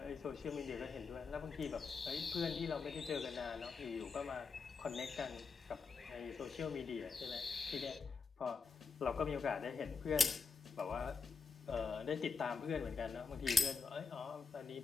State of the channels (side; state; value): right; quieter; 5.0 dB